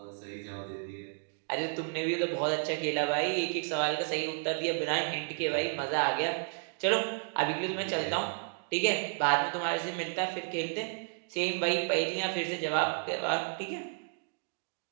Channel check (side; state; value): left; silent; 56 dB below the other